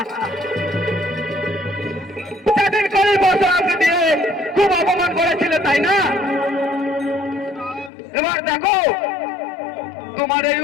সেদিন করে বছর আমাকে দিয়ে খুব অপমান করেছিলে তাই না? এবার দেখো তোমার এই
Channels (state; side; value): drops out; right; at 7.9 s